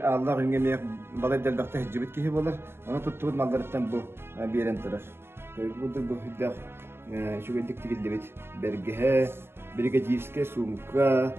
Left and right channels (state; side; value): late; left; 0.11 ms